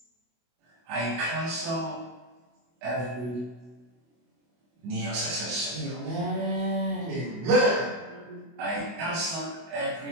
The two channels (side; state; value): left; late; 24 ms